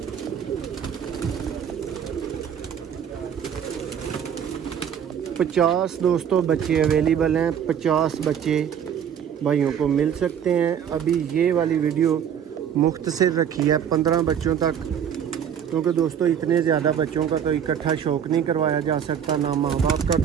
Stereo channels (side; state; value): left; quieter; 8.6 dB